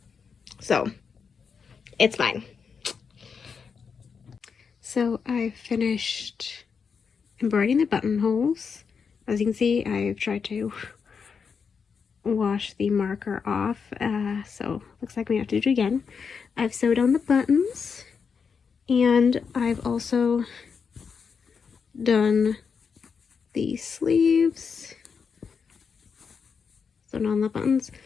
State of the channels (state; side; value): quieter; right; 6.0 dB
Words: So it's fine. So I finished embroidering the buttonholes. As you can see, I've tried to wash the marker off, so looks like we have to do it again. I've sewed on the buttons, and I've also done the sleeves, sewn on the buttons.